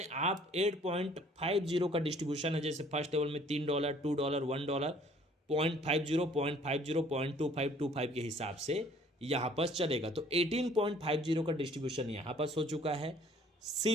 आप 8.50 का डिस्ट्रीब्यूशन है। जैसे फर्स्ट लेवल में $3, $2, $1, 0.50, 0.50, 0.25 के हिसाब से यहाँ पर चलेगा। तो 18.50 का डिस्ट्रीब्यूशन यहाँ पर हो चुका है।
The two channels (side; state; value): both; normal; correlation 0.57